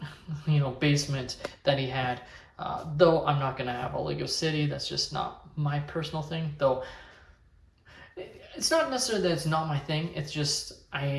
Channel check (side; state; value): both; identical; correlation 1.00